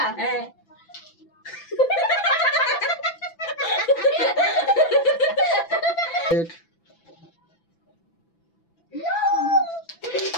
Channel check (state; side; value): late; right; 6.0 ms